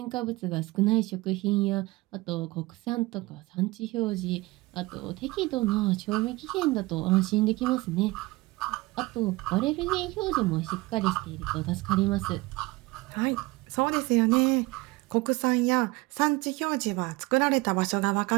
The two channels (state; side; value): quieter; left; 21.5 dB